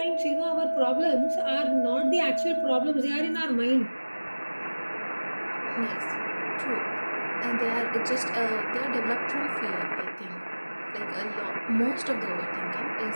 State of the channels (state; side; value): inverted; both; correlation -1.00